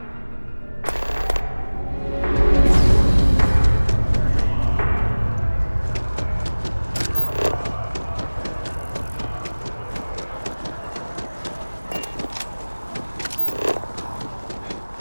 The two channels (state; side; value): inverted; both; correlation -1.00